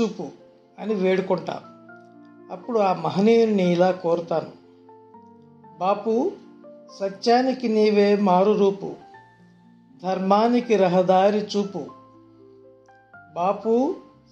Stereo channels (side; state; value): both; identical; correlation 1.00